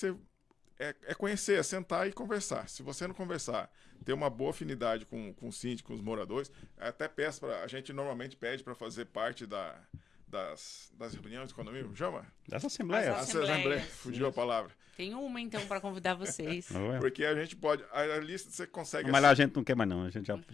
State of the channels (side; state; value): right; quieter; 6.2 dB